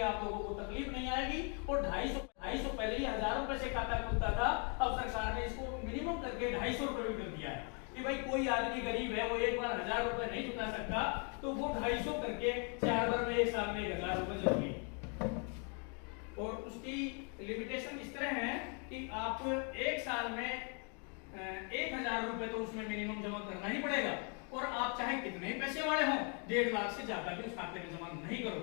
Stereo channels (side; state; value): right; quieter; 38.8 dB